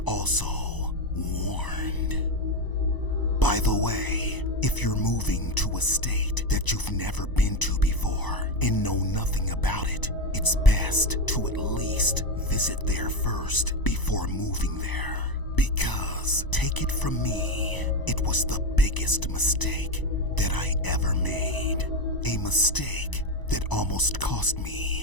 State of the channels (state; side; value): late; right; 1.0 ms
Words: also warned. By the way, if you're moving to a state that you've never been to before and know nothing about it, it's best to at least visit there first before moving there. Because, take it from me, it was the biggest mistake that I ever made. A mistake that almost cost